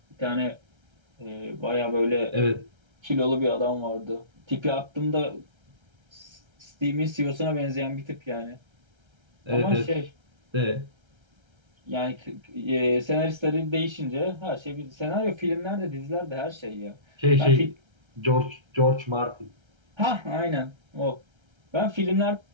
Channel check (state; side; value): late; left; 1.3 ms